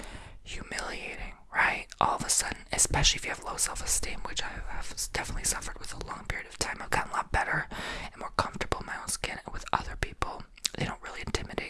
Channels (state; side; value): identical; both; correlation 1.00